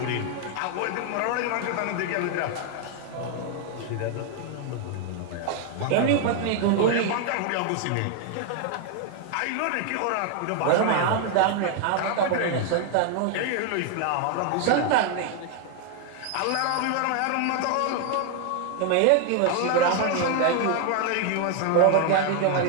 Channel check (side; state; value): both; different; correlation 0.00